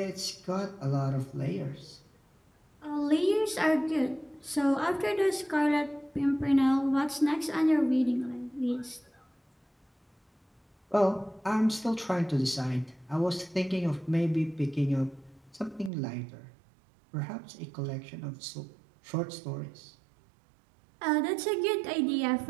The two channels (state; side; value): drops out; left; at 15.9 s